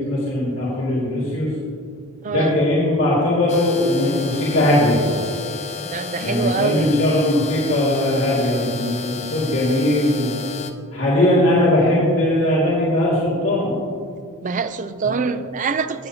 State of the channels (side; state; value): both; normal; correlation 0.40